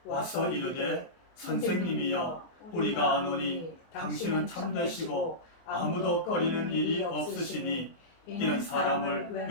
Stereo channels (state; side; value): late; right; 23 ms